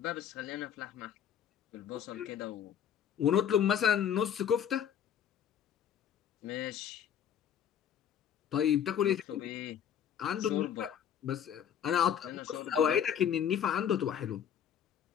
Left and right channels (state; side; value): quieter; right; 9.0 dB